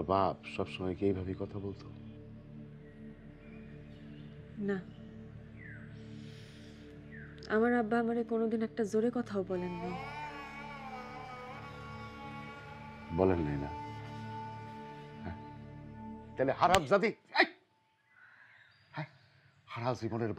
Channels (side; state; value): both; identical; correlation 1.00